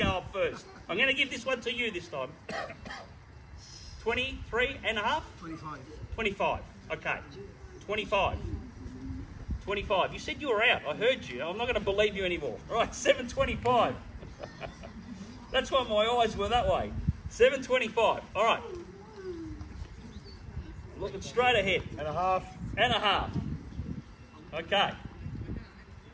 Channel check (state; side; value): identical; both; correlation 1.00